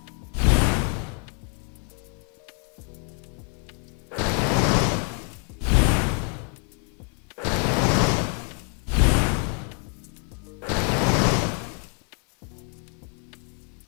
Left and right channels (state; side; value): quieter; right; 37.6 dB